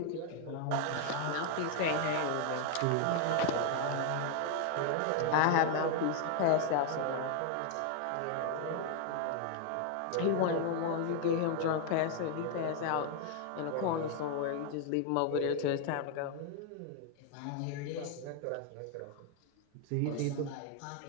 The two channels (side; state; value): both; different; correlation 0.00